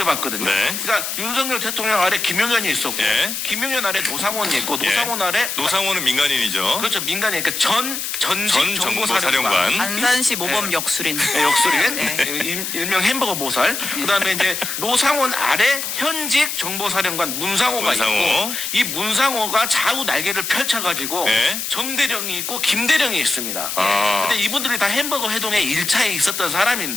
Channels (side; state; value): left; noise; hiss, 4 dB below the sound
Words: 네. 그러니까 윤석열 대통령 아래 김용현이 있었고 예. 김용현 아래 노상원이 있고 예. 노상원 아래 노상원은 민간인이죠. 그렇죠. 민간이 그러니까 전직 전 정보사령관. 정보사령관. 안산시 모범 역술인. 네, 역술인 일명 햄버거 보살. 그다음에 이제 노상원 아래 현 현직 정보사령관 문상호가 문상호. 있고 이 문상호가 좌우 날개를 펼쳐가지고 네. 정대령이 있고 김대령이 있습니다. 아. 근데 이분들이 다 햄버거 회동에 1차에 있었던